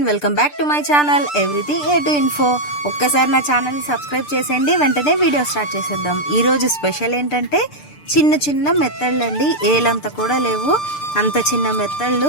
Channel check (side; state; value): right; late; 6.8 ms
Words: welcome back to my channel everything A to info. ఒక్కసారి నా ఛానల్ని subscribe చేసేయండి. వెంటనే వీడియో స్టార్ట్ చేసేద్దాం. ఈరోజు స్పెషల్ ఏంటంటే చిన్న చిన్న మెత్తళ్ళు అండి. ఏలంతా కూడా లేవు, అంత చిన్న మెత్తళ్ళు.